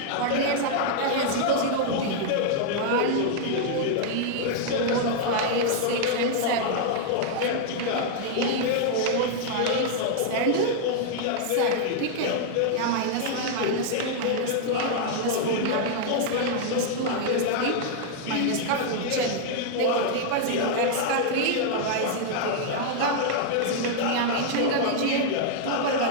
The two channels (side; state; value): both; different; correlation -0.01